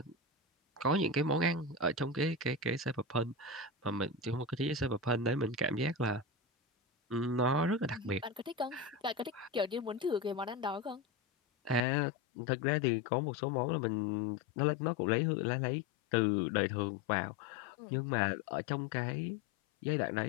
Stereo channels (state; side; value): drops out; right; at 11.9 s